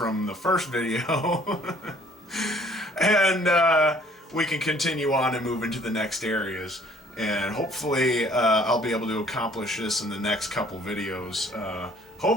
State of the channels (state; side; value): normal; both; correlation 0.57